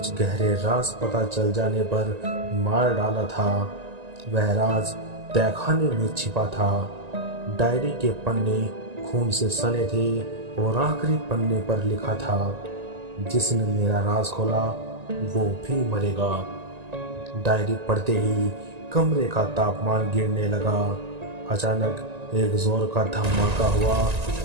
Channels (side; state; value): left; late; 1.9 ms